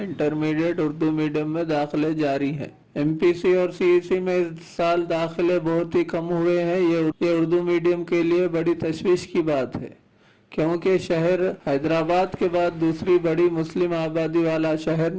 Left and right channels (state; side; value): identical; both; correlation 1.00